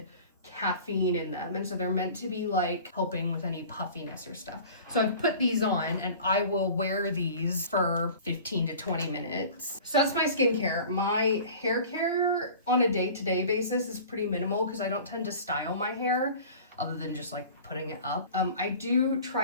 caffeine in them, and so they're meant to be like helping with any puffiness or stuff. So I've put these on and I will wear these for 15 to 20 minutes. So that's my skincare. My hair care on a day-to-day basis is pretty minimal because I don't tend to style my hair other than just like putting it up. I do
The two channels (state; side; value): inverted; both; correlation -0.42